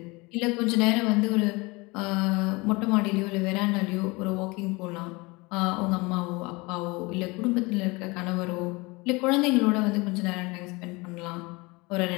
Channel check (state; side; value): quieter; right; 25.0 dB